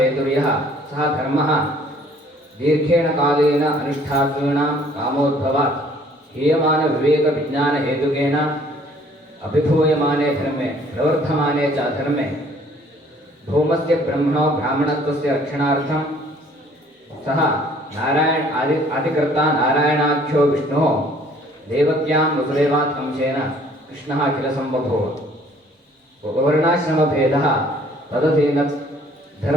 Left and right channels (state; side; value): normal; both; correlation 0.58